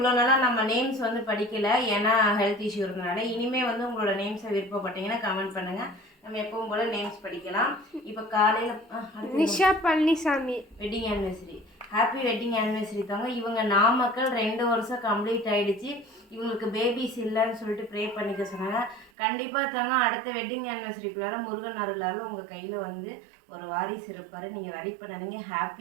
நாளாக நம்ம நேம்ஸ் வந்து படிக்கலை, ஏன்னா ஹெல்த் இஷ்யூ இருந்தனால. இனிமேல் வந்து உங்களோட நேம்ஸை விருப்பப்பட்டீங்கன்னா கமெண்ட் பண்ணுங்கள், நம்ம எப்பவும் போல் நேம்ஸ் படிக்கலாம். இப்போ காலையில் Nisha Palaniswami wedding anniversary. Happy wedding anniversary தாங்க. இவங்க நாமக்கல் 2 வருஷம் கம்ப்ளீட் ஆகிடுச்சு. இவங்களுக்கு பேபிஸ் இல்லைன்னு சொல்லிட்டு ப்ரே பண்ணிக்க சொன்னாங்க. கண்டிப்பாக தாங்க அடுத்த வெட்டிங் ஆனிவர்சரிக்குள்ளார முருகன் அருளால் உங்கள் கையில் வந்து ஒரு வாரிசு இருப்பார். நீங்கள் வரி பண்ணாதீங்க,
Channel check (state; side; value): drops out; left; at 19.1 s